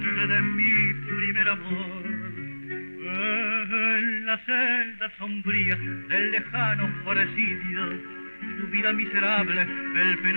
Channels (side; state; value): both; inverted; correlation -1.00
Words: de mi primer amor. En la celda sombría del lejano presidio, su vida miserable el